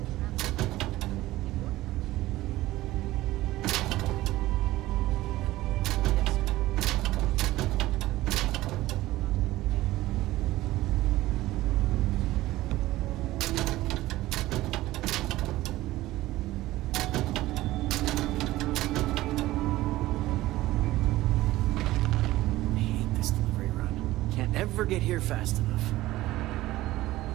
ever get here fast enough.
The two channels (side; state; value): left; quieter; 16.8 dB